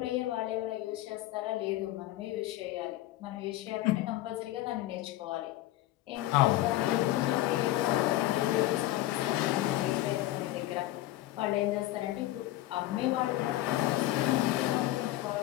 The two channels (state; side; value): quieter; right; 15.7 dB